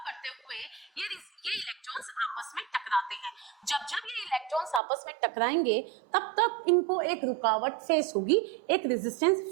हुए ये इलेक्ट्रॉन्स आपस में टकराते हैं। जब जब ये इलेक्ट्रॉन्स आपस में टकराएंगे तब तक इनको एक रुकावट फेस होगी, एक रेजिस्टेंस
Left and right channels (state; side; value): drops out; left; at 4.8 s